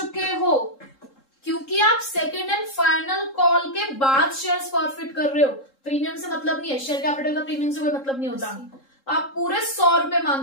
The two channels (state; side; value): late; right; 3.7 ms